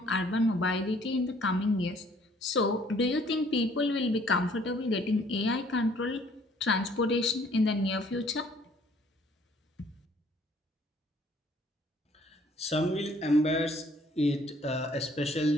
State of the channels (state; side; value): normal; both; correlation 0.60